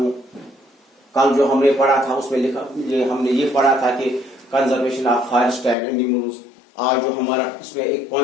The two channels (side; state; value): right; drops out; at 5.8 s